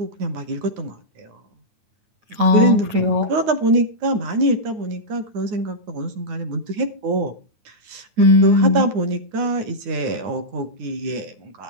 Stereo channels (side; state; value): left; late; 9.6 ms